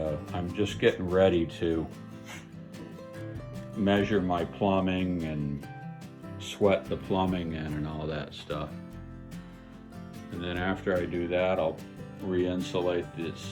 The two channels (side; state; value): both; identical; correlation 1.00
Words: I'm just getting ready to measure my plumbing and sweat the plumbing in and all that stuff. And then after I do that, I'll re-insulate